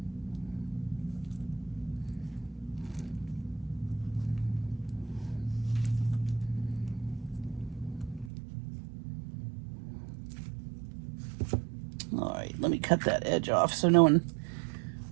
All right, let me cut that edge off so no one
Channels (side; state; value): left; drops out; at 8.3 s